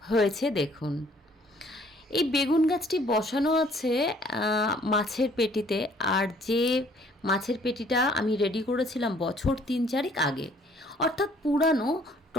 হয়েছে দেখুন। এই বেগুন গাছটি বসানো আছে মাছের পেটিতে, আর যে মাছের পেটিটা আমি রেডি করেছিলাম বছর 3-4 আগে, অর্থাৎ পুরানো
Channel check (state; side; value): normal; both; correlation 0.59